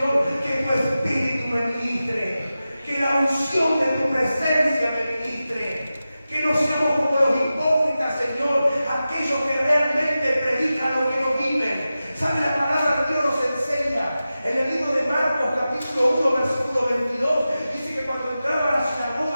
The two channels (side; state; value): both; inverted; correlation -0.94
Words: que tu Espíritu me ministre, que la unción de tu presencia me ministre, que no seamos como los hipócritas, Señor, aquellos que realmente predican lo que no viven. ¿Sabe? La palabra de Dios nos enseña en el libro de Marcos, capítulo 1, versículo 22, dice que cuando entraba a la